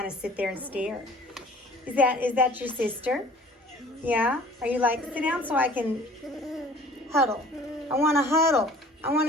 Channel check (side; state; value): both; normal; correlation 0.49